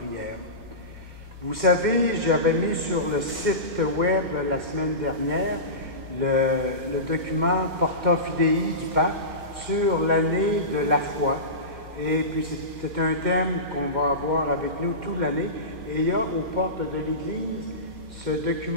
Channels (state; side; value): late; left; 2.1 ms